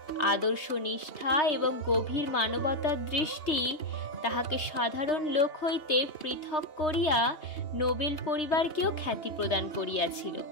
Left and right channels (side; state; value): right; late; 3.3 ms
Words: আদর্শ নিষ্ঠা এবং গভীর মানবতার দৃষ্টি তাহাকে সাধারণ লোক হইতে পৃথক করিয়া নোবেল পরিবারকেও খ্যাতি প্রদান করিয়াছিল,